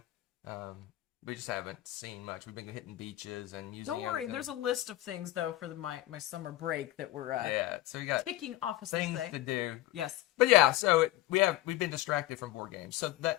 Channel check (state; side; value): quieter; right; 15.7 dB